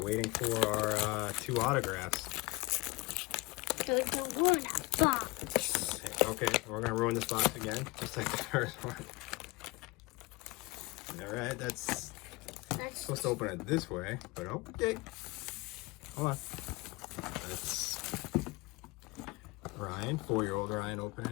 waiting for our 2 autographs. So you ruin a box. Okay, we're gonna ruin this box again, just like the first one. All right, that's supposed to open it this way, but okay. Hold on. That's Ryan, 4-year-old Ryan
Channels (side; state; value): right; quieter; 23.8 dB